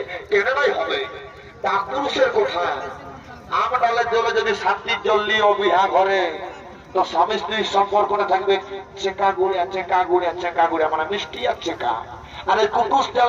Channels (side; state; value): both; identical; correlation 1.00